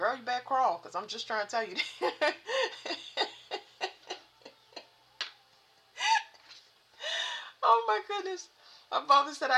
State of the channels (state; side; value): identical; both; correlation 1.00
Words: you better crawl, because I'm just trying to tell you. Oh, my goodness. My father said